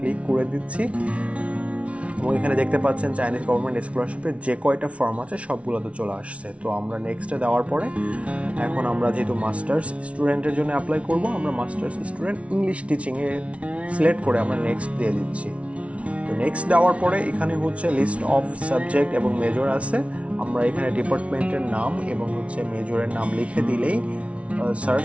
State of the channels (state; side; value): late; left; 0.063 ms